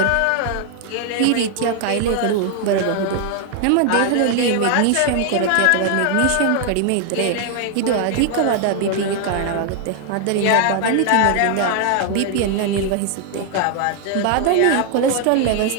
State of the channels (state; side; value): different; both; correlation 0.00